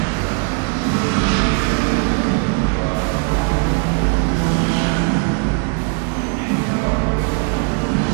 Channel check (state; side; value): quieter; left; 39.3 dB